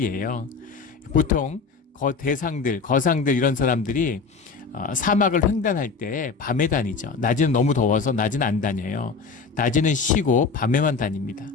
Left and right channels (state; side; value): quieter; right; 4.9 dB